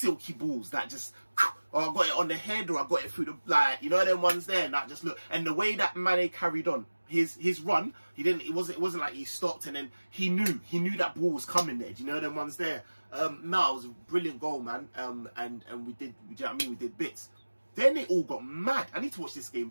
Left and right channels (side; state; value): both; inverted; correlation -1.00